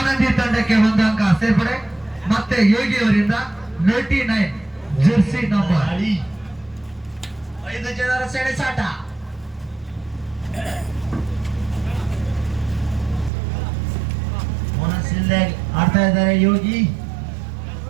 ತಂಡಕ್ಕೆ 1 ಅಂಕ ಸೇರ್ಪಡೆ. ಮತ್ತೆ ಯೋಗಿ ಅವರಿಂದ 99 ಜೆರ್ಸಿ ನಂಬರ್. 5 ಜನರ ಸೆಣಸಾಟ. ಮನಸ್ಸಿಲ್ಲದೆ ಆಡ್ತಾ ಇದ್ದಾರೆ ಯೋಗಿ.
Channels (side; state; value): left; drops out; at 13.3 s